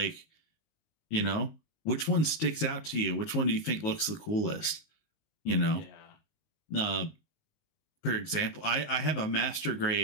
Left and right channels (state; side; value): late; right; 19 ms